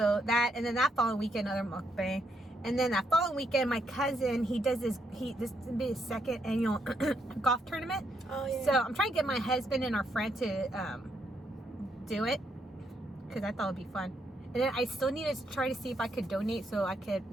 that, and then that following weekend, another mukbang, and then that following weekend, my cousin, this will be his second annual golf tournament. Oh yeah. So I'm trying to get my husband and our friend to do it because I thought it'd be fun. And then I still need to try to see if I could donate so I could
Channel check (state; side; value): normal; both; correlation 0.76